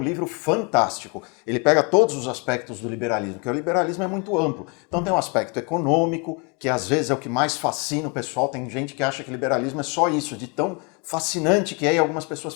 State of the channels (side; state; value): right; quieter; 32.7 dB